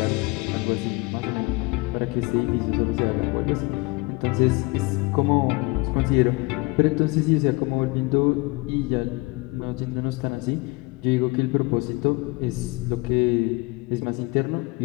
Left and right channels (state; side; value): quieter; right; 25.2 dB